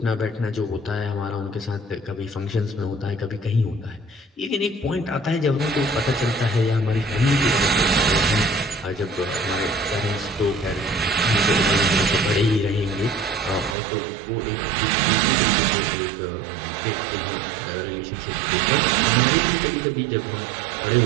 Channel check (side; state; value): left; drops out; at 13.8 s